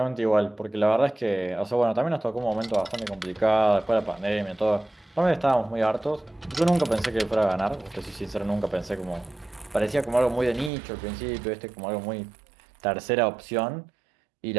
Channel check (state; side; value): drops out; left; at 10.7 s